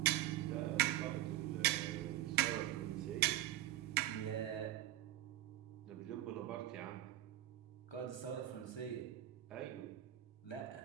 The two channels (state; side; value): quieter; left; 13.7 dB